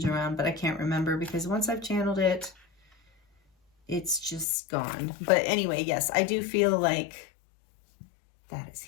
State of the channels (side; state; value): right; drops out; at 4.5 s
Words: around, but I can't remember, because once I've channeled it, it's just gone. But anyway, yes, I do feel like that is